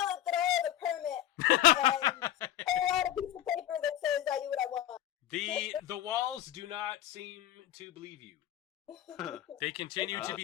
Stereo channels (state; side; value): quieter; right; 12.2 dB